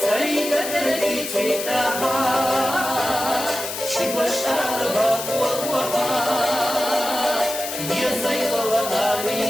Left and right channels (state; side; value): noise; left; hiss, 6 dB below the sound